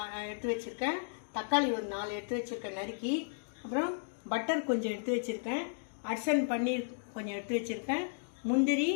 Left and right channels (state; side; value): silent; right; digital silence